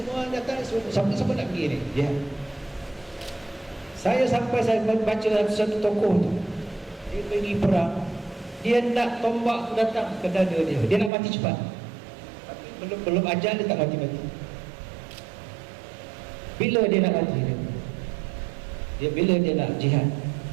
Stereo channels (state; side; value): drops out; left; at 11.1 s